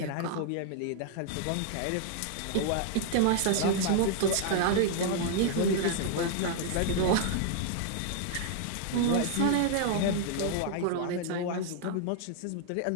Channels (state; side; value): different; both; correlation 0.00